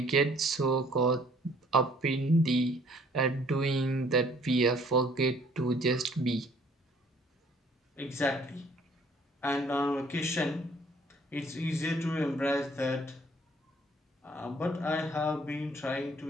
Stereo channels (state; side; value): normal; both; correlation 0.59